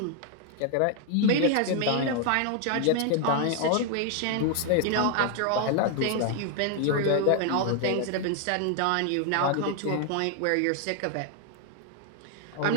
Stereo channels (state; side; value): different; both; correlation 0.00